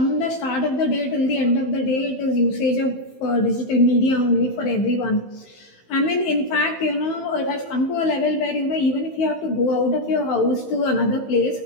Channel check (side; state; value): right; late; 15 ms